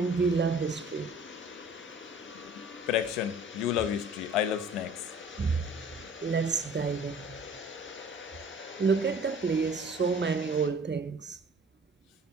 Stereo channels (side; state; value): both; normal; correlation 0.48